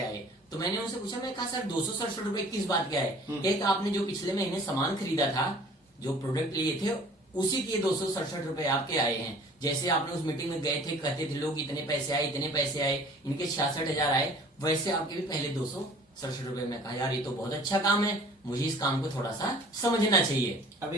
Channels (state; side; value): normal; both; correlation 0.49